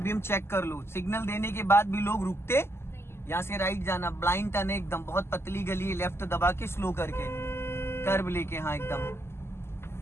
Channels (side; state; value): right; late; 0.12 ms